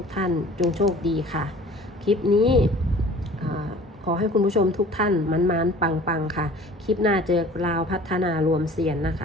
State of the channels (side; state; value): both; normal; correlation 0.47